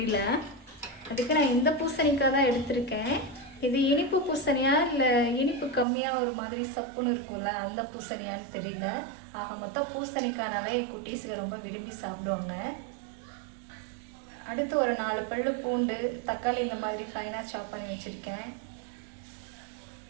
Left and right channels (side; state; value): left; drops out; at 5.9 s